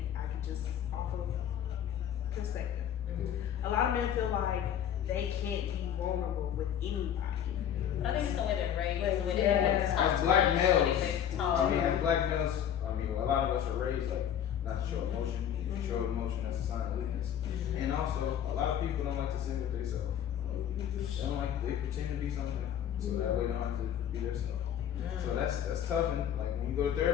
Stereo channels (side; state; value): right; quieter; 9.6 dB